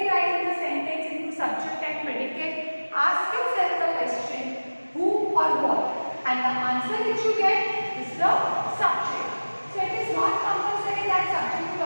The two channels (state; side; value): inverted; both; correlation -1.00